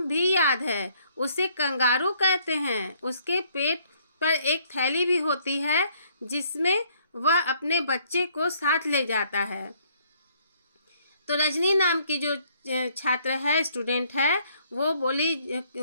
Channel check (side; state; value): both; inverted; correlation -0.64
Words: भी याद है, उसे कंगारू कहते हैं। उसके पेट पर एक थैली भी होती है जिसमें वह अपने बच्चे को साथ ले जाता है। तो रजनी नाम की जो छात्र है, स्टूडेंट है, वो बोली,